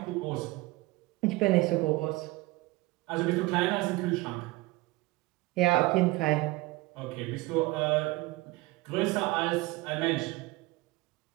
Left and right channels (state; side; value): quieter; left; 20.8 dB